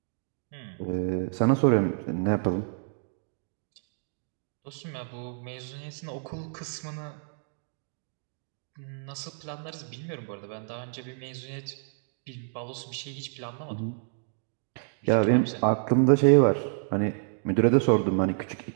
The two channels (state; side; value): silent; left; digital silence